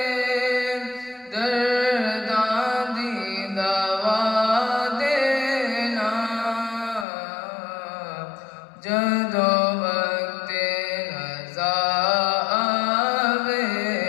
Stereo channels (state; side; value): drops out; right; at 7.1 s